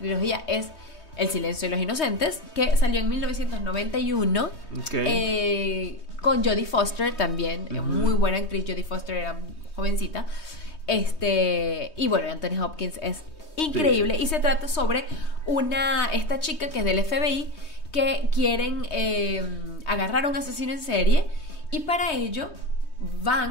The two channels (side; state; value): right; late; 3.2 ms